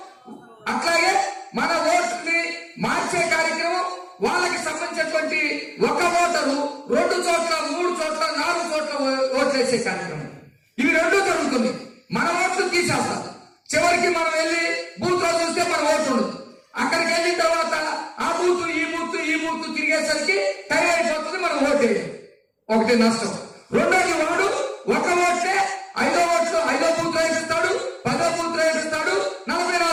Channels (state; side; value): identical; both; correlation 1.00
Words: అట్లాగే మన ఓట్లని మార్చే కార్యక్రమం, వాళ్ళకి సంబంధించినటువంటి ఒక ఓటరు 2 చోట్ల 3 చోట్ల 4 చోట్ల ఓట్లు వేసే కార్యక్రమం, ఇవి 2 జరుగుతుంది. మన ఓట్లు తీసేస్తాం. చివరికి మనం వెళ్ళి బూత్ లో చూస్తే మన ఓటు ఉండదు. అక్కడికి వెళ్ళిన తర్వాత ఆ బూత్ ఈ బూత్ తిరిగేసరికి టైం అయిపోతుంది, మనం ఓటు వేయాలి. ఒకటి నష్టం. రెండోది, వాడు ఒక ఓట్లే 5వ ఓట్లు 5వ బూత్ లో వేపిస్తాడు, 10వ బూత్ లో వేపిస్తాడు,